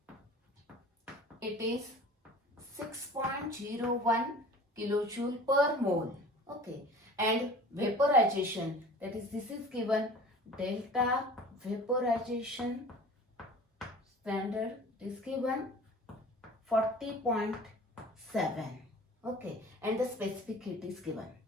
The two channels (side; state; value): both; normal; correlation 0.43